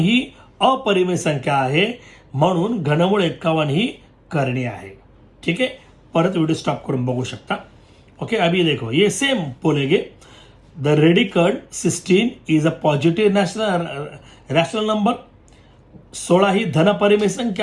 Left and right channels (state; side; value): identical; both; correlation 1.00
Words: अपरिमेय संख्या आहे, म्हणून घनमूळ 51 ही करणी आहे. ठीक है, परत व्हिडिओ स्टॉप करून बघू शकता. ओके, अभी देखो ये सेम बोलेंगे. The radical 16 is a positive rational number. 16 ही धन परिमेय